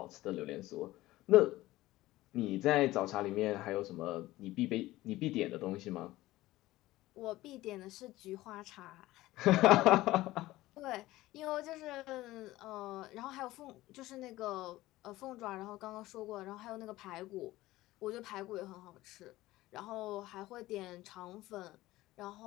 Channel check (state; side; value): quieter; right; 17.2 dB